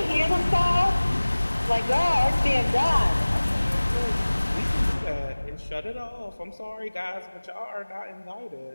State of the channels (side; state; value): both; inverted; correlation -1.00